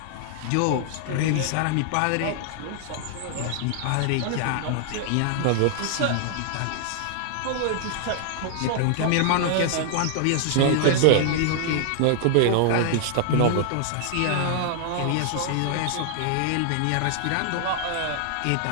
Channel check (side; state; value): both; different; correlation -0.01